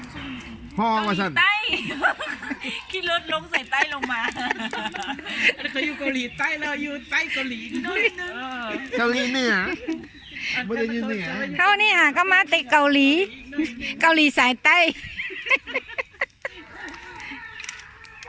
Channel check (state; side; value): identical; both; correlation 1.00